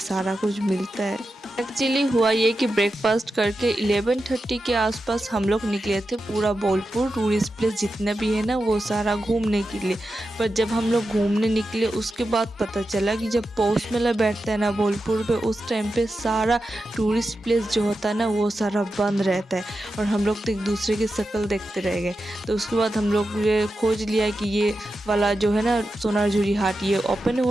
सारा कुछ मिलता है। एक्चुअली हुआ ये कि ब्रेकफास्ट करके 11:30 के आसपास हम लोग निकले थे पूरा बोलपुर टूरिस्ट प्लेस जितना भी है ना, वो सारा घूमने के लिए। पर जब हम लोग घूमने निकले उसके बाद पता चला कि जब पौष मेला बैठता है ना बोलपुर पे, उस टाइम पे सारा टूरिस्ट प्लेस जो होता है ना, वो सारा बंद रहता है। और हम लोग तो एक दूसरे की शक्ल देखते रह गए। तो उसके बाद हम लोग ये खोज लिया कि ये वाला जो है ना सोनारझुरी हाट, ये ओपन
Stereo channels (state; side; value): normal; both; correlation 0.90